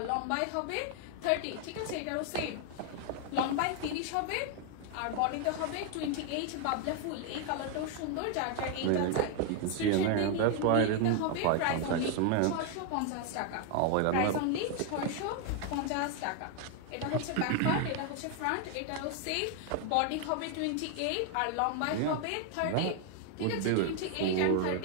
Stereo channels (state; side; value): different; both; correlation 0.00